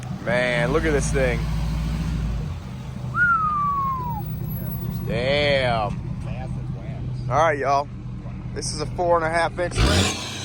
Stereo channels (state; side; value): identical; both; correlation 1.00